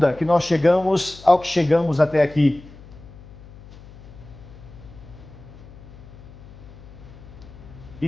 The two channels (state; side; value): noise; left; hum, 19 dB below the sound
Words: que nós chegamos ao que chegamos até aqui. E